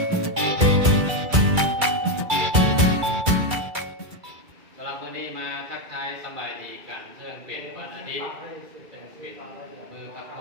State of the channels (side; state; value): left; late; 2.3 ms